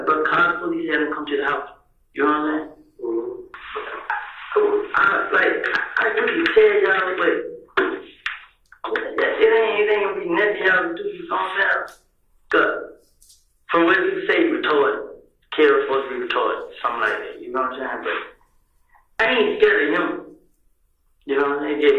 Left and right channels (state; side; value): identical; both; correlation 1.00